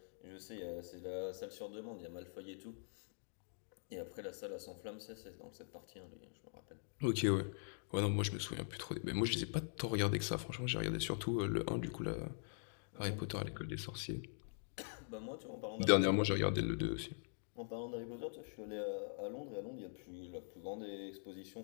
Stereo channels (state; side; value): silent; right; digital silence